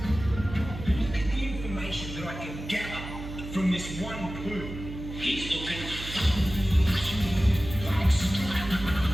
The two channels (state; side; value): noise; right; hum, 10 dB below the sound